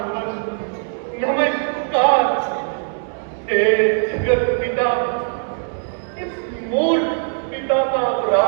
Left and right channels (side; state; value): left; silent; digital silence